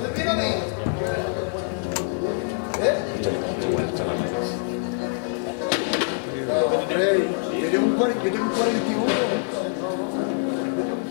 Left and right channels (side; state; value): right; silent; digital silence